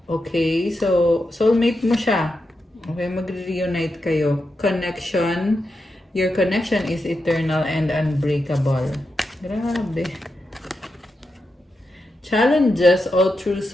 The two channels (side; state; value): both; normal; correlation 0.87